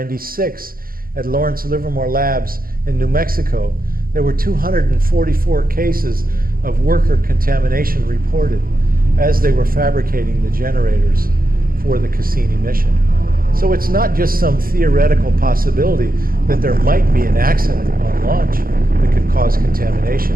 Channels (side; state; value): left; late; 0.42 ms